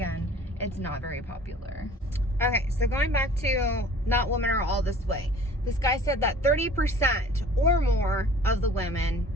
it's not very popular. Okay, so going back to not women are all this way. This guy said that 30% or more of the women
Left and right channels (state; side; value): normal; both; correlation 0.49